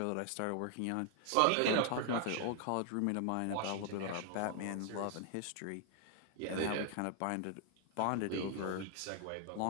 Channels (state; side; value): different; both; correlation 0.00